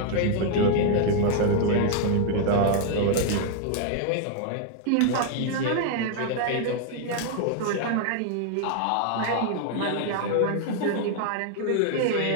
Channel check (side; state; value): both; different; correlation 0.00